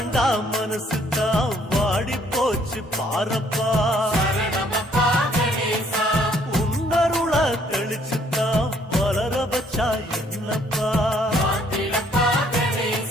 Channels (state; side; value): normal; both; correlation 0.63